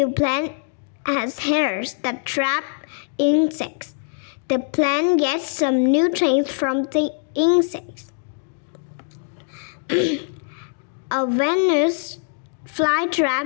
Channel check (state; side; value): silent; right; 64 dB below the other